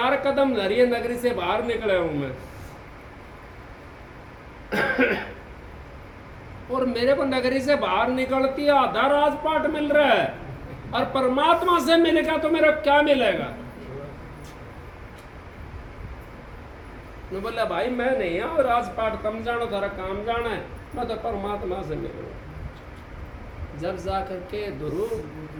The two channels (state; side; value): identical; both; correlation 1.00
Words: कदम धरी है, नगरी से बाहर निकला हूं मैं। और मेरे को नगरी से बाहर निकलती है आधा राजपाट मिल रहा है, और परमात्मा से मिलेगा तो मेरा क्या मिलेगा। मैं बोला भाई मैं नहीं हूँ राजपाट, तुम जानो तारा काम जाना है, मैं तो परमात्मा से मिलूँ। जब जा करके गुरु